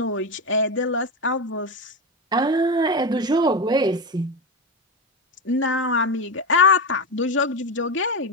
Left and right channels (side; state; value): both; normal; correlation 0.14